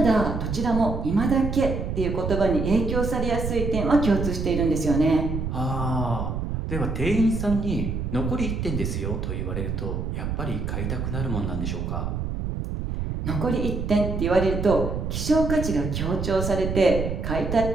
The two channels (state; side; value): noise; right; rumble, 3 dB below the sound